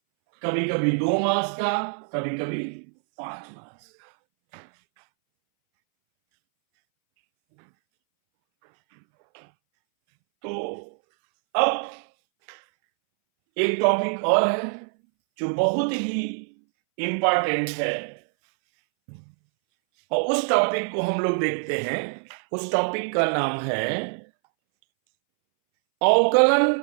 कभी कभी 2 मार्क्स का, कभी कभी 5 मार्क्स का। तो अब एक टॉपिक और है जो बहुत ही इंपॉर्टेंट है, और उस टॉपिक को हम लोग देखते हैं। उस टॉपिक का नाम है अवकलन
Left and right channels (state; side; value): silent; left; 62 dB below the other